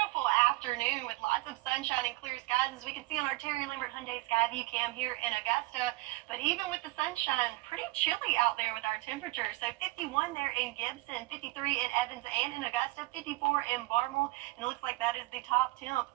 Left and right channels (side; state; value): left; quieter; 21.1 dB